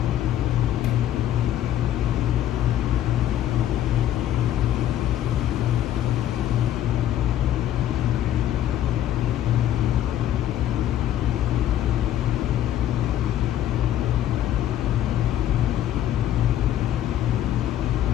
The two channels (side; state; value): right; quieter; 11.7 dB